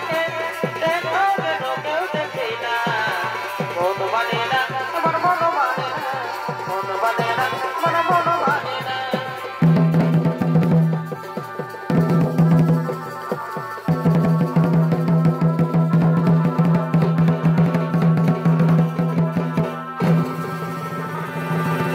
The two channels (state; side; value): identical; both; correlation 1.00